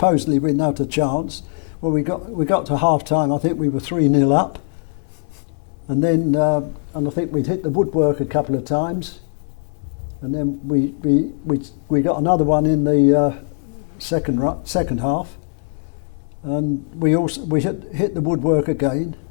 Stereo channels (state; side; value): silent; right; 65 dB below the other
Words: with not a chance. Well, we got to half time. I think we were 3-0 up, and then and I think we'd hit the woodwork a couple of times, and then we got another one in the second half, and we hit the woodwork again.